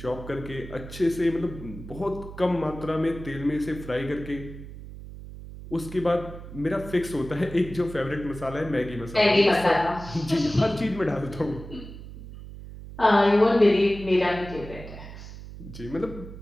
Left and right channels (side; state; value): right; noise; hum, 13 dB below the sound